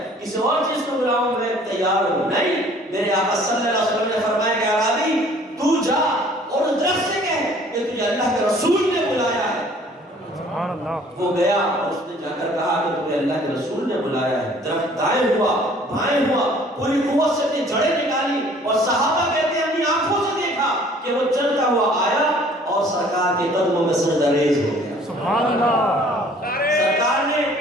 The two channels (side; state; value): both; normal; correlation 0.54